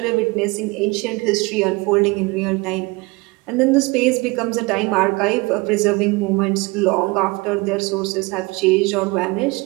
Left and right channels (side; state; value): left; quieter; 25.1 dB